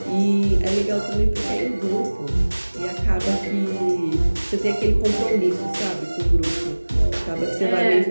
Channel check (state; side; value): inverted; both; correlation -1.00